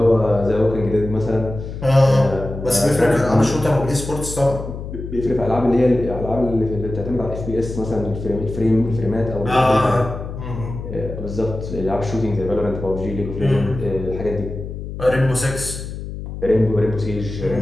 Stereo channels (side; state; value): left; noise; hum, 8 dB below the sound